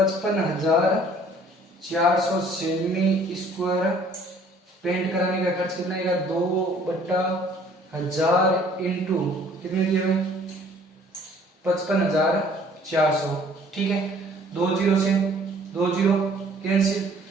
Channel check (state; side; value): normal; both; correlation 0.56